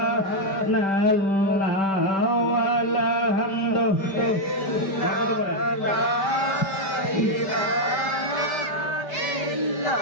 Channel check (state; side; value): late; right; 5.1 ms